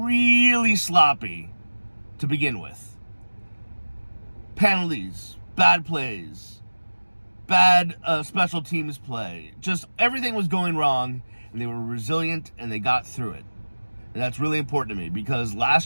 sloppy to begin with. Penalties, bad plays, bad special teams play. Just everything was going wrong, and they were resilient, and they got through it. And that's really important to me, because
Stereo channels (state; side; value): inverted; both; correlation -1.00